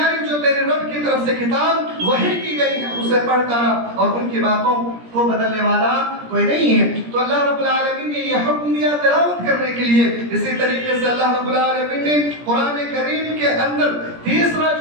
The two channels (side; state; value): left; late; 17 ms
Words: جو تیرے رب کی طرف سے کتاب وحی کی گئی ہے اسے پڑھتا رہا اور ان کی باتوں کو بدلنے والا کوئی نہیں ہے. تو اللہ رب العالمین نے یہ حکم دیا تلاوت کرنے کے لیے. اسی طریقے سے اللہ رب العالمین نے قرآن کریم کے اندر تیسرا